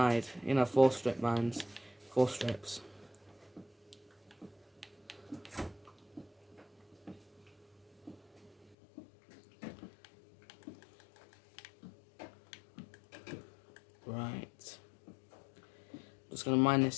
4 strip mines. 4 strips. Right. Just going to mine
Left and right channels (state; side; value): drops out; right; at 8.8 s